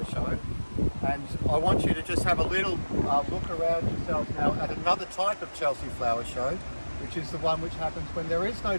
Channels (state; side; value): inverted; both; correlation -1.00